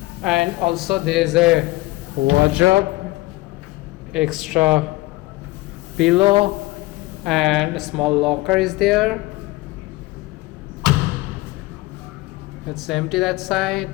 and also there is a wardrobe, extra pillow, and a small locker is there. It's empty that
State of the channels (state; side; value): quieter; right; 20.4 dB